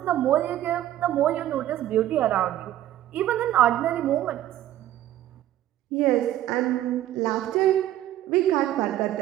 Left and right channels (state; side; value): quieter; left; 13.0 dB